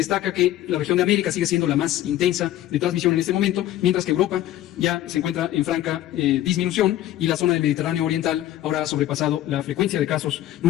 que la región de América sigue siendo la más intensa de transmisión en este momento, mientras que Europa ya se encuentra en franca disminución, y la zona del Mediterráneo Oriental ahora ha sobrepasado la frecuencia de casos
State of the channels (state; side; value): quieter; right; 13.4 dB